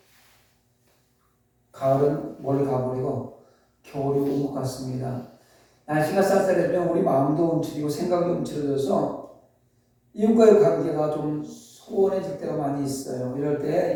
가을은 멀리 가버리고 겨울이 온 것 같습니다. 날씨가 쌀쌀해지면 우리 마음도 움츠리고 생각이 움츠러져서 이웃과의 관계가 좀 소원해질 때가 많이 있어요. 이럴 때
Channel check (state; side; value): identical; both; correlation 1.00